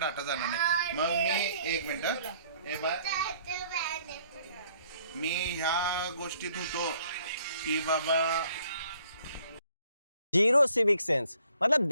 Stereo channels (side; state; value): both; inverted; correlation -0.62